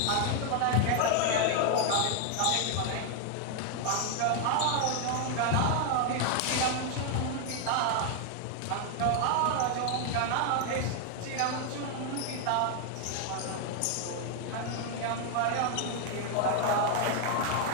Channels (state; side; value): different; both; correlation 0.00